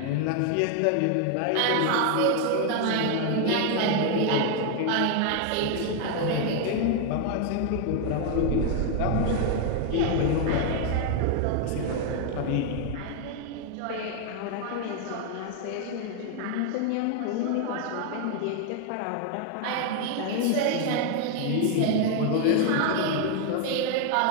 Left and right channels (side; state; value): both; different; correlation 0.01